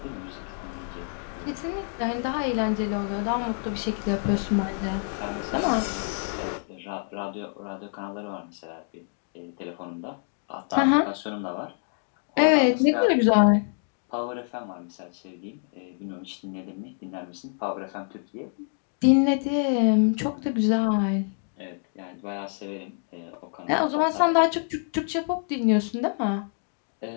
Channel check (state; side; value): silent; right; 56 dB below the other